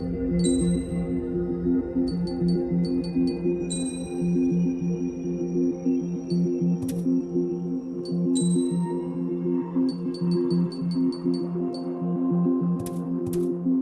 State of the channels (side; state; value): both; identical; correlation 1.00